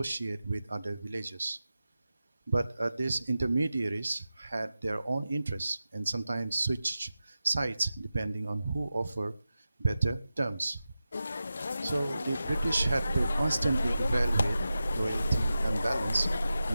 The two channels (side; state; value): both; inverted; correlation -0.93